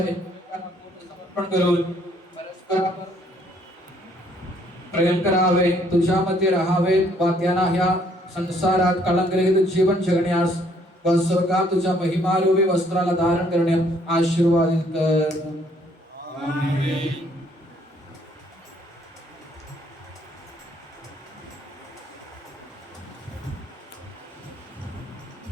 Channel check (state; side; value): normal; both; correlation 0.65